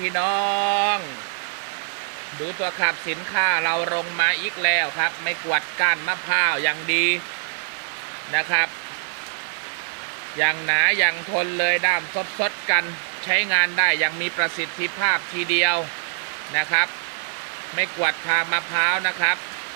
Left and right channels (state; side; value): silent; left; digital silence